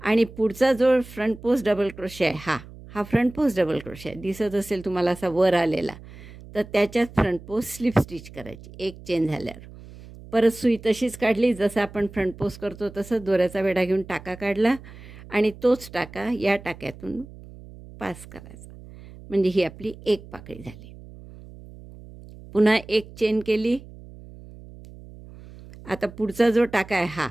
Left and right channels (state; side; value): noise; right; hum, 18 dB below the sound